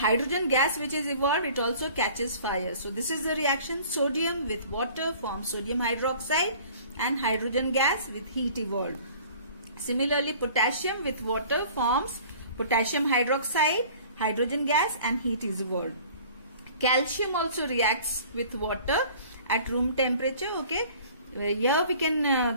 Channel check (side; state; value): both; inverted; correlation -0.48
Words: gas which is evolved, it also catches fire. So this is the reaction. Sodium with water forms sodium hydroxide and hydrogen gas with heat evolved. Similarly, potassium with water forms potassium hydroxide, hydrogen gas, and heat is evolved. Calcium also reacts with water at room temperature. Okay, here we can